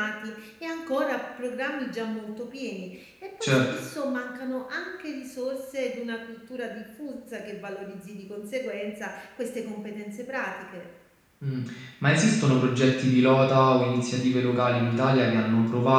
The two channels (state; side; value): identical; both; correlation 1.00